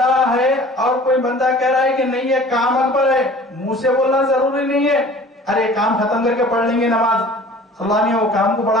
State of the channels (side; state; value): both; normal; correlation 0.46